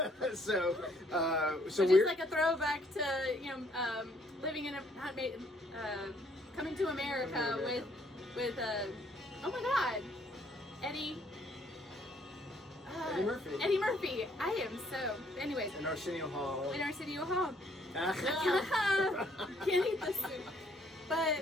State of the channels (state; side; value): normal; both; correlation 0.66